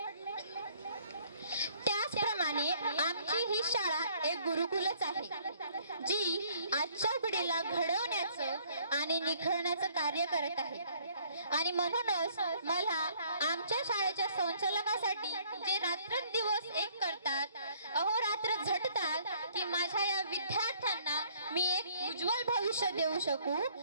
त्याचप्रमाणे आमची ही शाळा एक गुरुकुलच आहे जी आजच्या पिढीला घडवण्याचं आणि निखळण्याचं कार्य करत आहे। आणि म्हणूनच मला आमच्या शाळेच्या संचालकासाठी जे रात्रंदिवस एक करतात, अहोरात्र झटतात की माझ्या या विद्यार्थ्यांना मी एक उज्ज्वल भविष्य देऊ शकू,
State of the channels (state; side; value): inverted; both; correlation -0.61